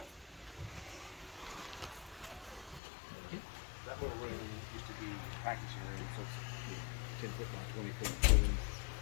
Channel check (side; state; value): right; drops out; at 2.8 s